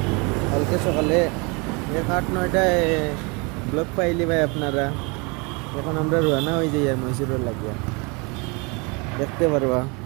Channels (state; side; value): quieter; left; 29.9 dB